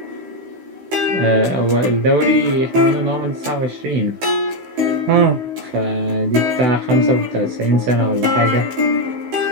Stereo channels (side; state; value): left; late; 16 ms